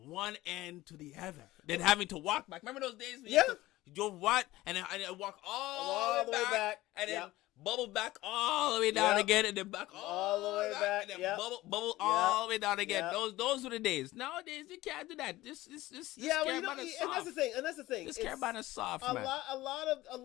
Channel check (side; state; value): right; quieter; 17.5 dB